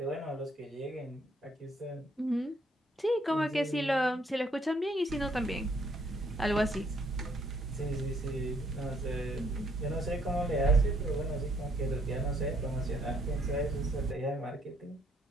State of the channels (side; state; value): both; normal; correlation 0.68